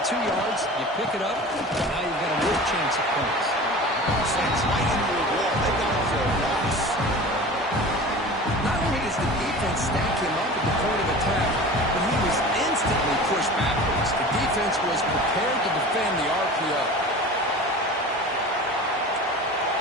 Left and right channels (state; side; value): normal; both; correlation 0.37